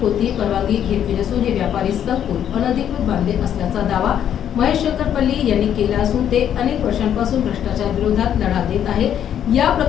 कोणतीही परवानगी घेतली नसून हे व्यापारी संकुल अनधिकृत बांधले असल्याचा दावा महेश शंकरपल्ली यांनी केला असून ते अनेक वर्षांपासून भ्रष्टाचार विरोधात लढा देत आहे। या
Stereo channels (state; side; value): quieter; right; 9.7 dB